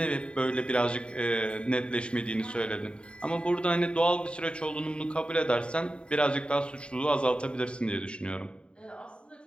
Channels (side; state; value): right; late; 0.054 ms